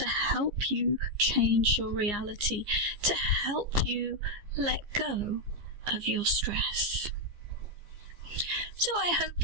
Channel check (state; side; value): late; left; 15 ms